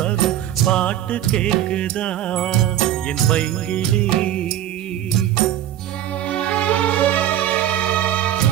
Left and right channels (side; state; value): left; quieter; 11.8 dB